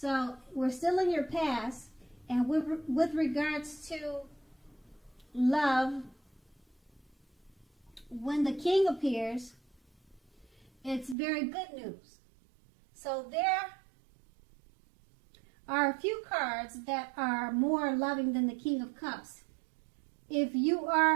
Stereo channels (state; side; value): drops out; left; at 11.2 s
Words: we're still in your past, and with regards to love, when the King appears, it's very good news. So there are a few cards that are more loving than the King of Cups. If you